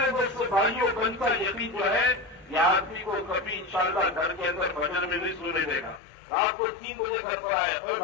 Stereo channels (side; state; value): right; drops out; at 6.0 s